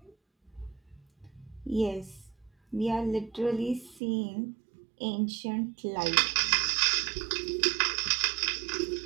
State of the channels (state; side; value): drops out; left; at 4.0 s